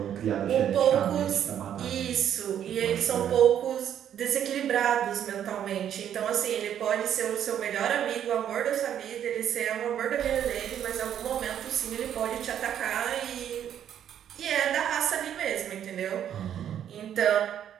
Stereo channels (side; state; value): left; quieter; 9.8 dB